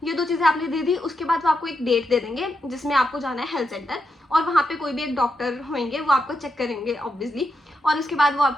ये दो चीज़ें आपने दे दी। उसके बाद वो आपको एक डेट दे देंगे जिसमें आपको जाना है हेल्थ सेंटर, और वहाँ पे कोई भी एक डॉक्टर होंगे वो आपको चेक करेंगे ऑब्वियसली। और उसके बाद वो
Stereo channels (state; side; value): normal; both; correlation 0.84